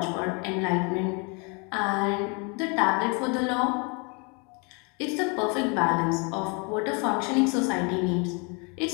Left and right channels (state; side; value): quieter; right; 33.0 dB